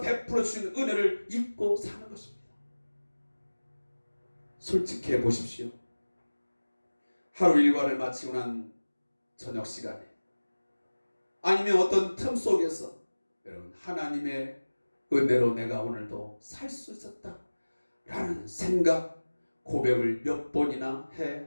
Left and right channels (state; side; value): inverted; both; correlation -1.00